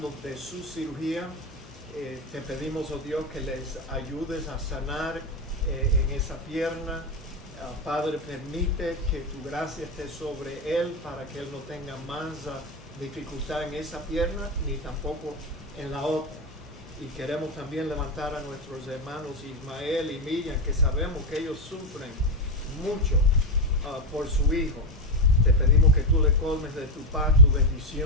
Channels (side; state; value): both; normal; correlation 0.10